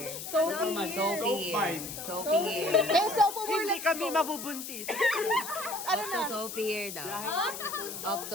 Sophie here. Sophie here. Eh, sophomore, let's kami go. mabubuntis. Ano Off na? to Sophie here daw. Off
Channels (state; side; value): noise; left; hiss, 8 dB below the sound